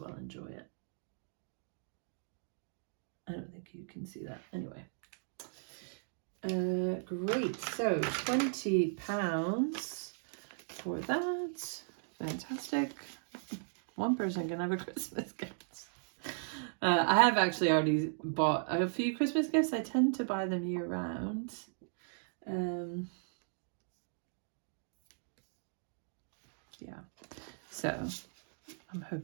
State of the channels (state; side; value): silent; left; digital silence